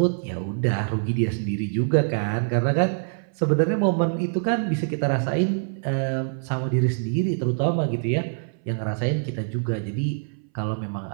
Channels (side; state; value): left; silent; 60 dB below the other